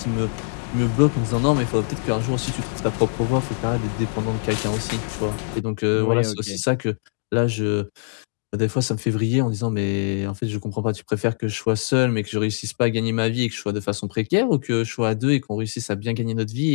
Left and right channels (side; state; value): right; silent; digital silence